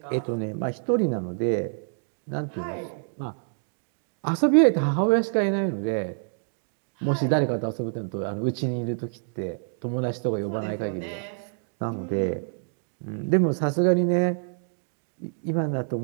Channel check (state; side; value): silent; left; digital silence